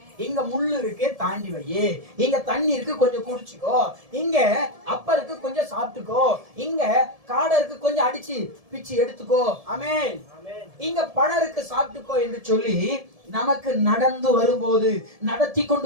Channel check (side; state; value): left; late; 1.7 ms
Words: இங்க முள்ளு இருக்கு, தாண்டி வை. இங்க தண்ணி இருக்கு, கொஞ்சம் குடிச்சுக்கோ. இங்க அப்ப இருக்கு, கொஞ்சம் சாப்பிட்டுக்கோ. இங்க காடை இருக்கு, கொஞ்சம் அடிச்சு பிச்சு எடுத்துக்கோ. ஆமென். இங்க பழம் இருக்கு, சாப்பிட்டுக்கோ என்று சொல்லி நமக்கு நடந்து வரும்போது, நடத்தி